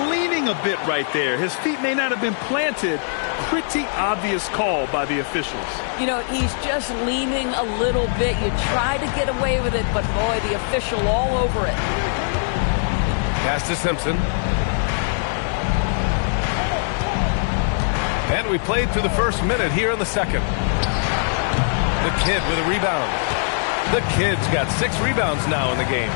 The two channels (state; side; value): silent; right; digital silence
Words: leaning a bit right there. His feet may not have been planted. Pretty obvious call by the officials. You know, he's just leaning a little bit. You try to get away with it, but boy, the official all over it. Pass to Simpson. And we played through the first minute here in the second. The kid with a rebound. The kid's got 6 rebounds now in the game.